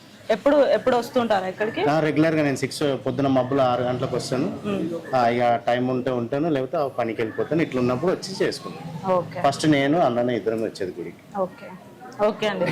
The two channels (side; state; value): both; identical; correlation 1.00